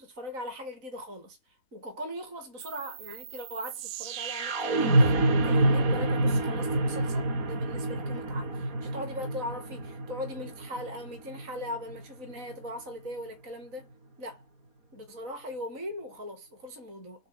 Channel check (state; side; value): late; left; 4.0 ms